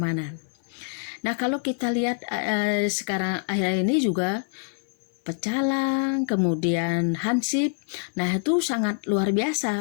Nah, kalau kita lihat sekarang akhir ini juga Pecalang, kemudian Hansip, nah itu sangat luar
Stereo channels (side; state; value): right; silent; 60 dB below the other